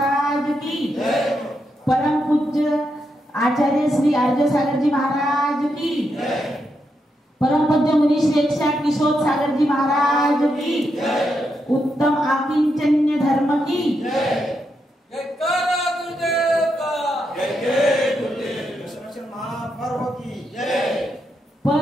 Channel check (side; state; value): both; normal; correlation 0.83